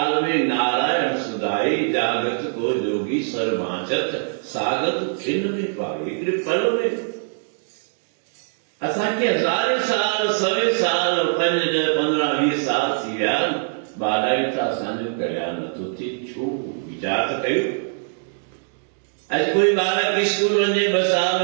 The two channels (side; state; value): left; silent; digital silence